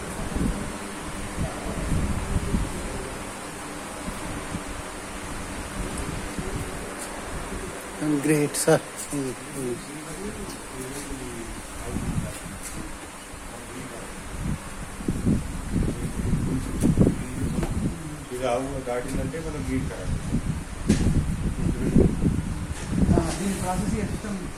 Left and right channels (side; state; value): both; identical; correlation 1.00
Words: Great sir. ఇది ఆవు దాటిందంటే మనం గీట్ దీని ప్రాసెస్